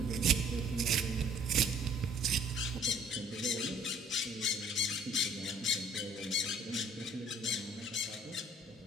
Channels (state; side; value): normal; both; correlation 0.56